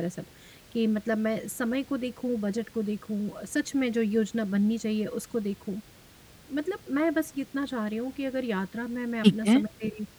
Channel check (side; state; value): both; identical; correlation 1.00